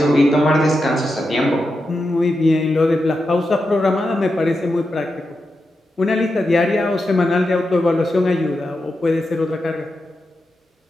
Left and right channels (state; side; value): normal; both; correlation 0.88